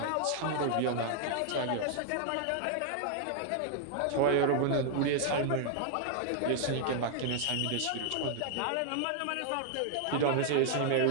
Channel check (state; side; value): different; both; correlation 0.00